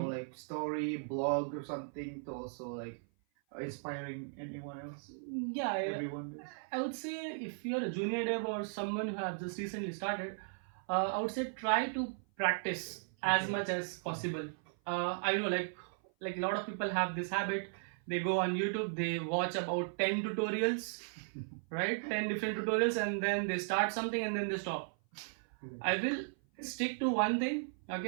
story, blog or something to also like inspiring anyone else? Everyone. I would say if you're a junior dev or someone who has just recently started, I would say try to practice as much as possible. I know like a lot of people have this habit. They go on YouTube, they watch about 10 tutorials, right? 10 different tutorials, and then they start something and then they stop. I will stick to one thing,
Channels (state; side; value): silent; left; 53 dB below the other